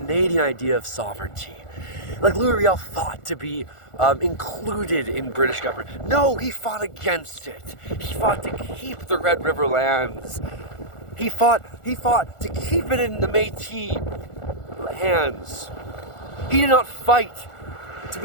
idea of sovereignty. Like Louis Riel fought to be included in British government. No, he fought against it. He fought to keep the Red River lands. He fought to keep it in the Métis hands. He did not fight to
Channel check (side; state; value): right; late; 1.4 ms